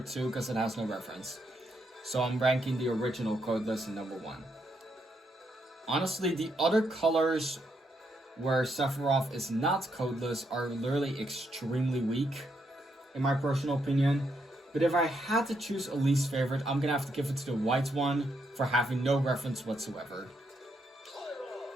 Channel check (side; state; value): both; normal; correlation 0.78